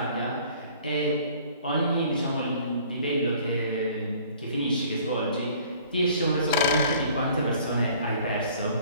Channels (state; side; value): inverted; both; correlation -0.54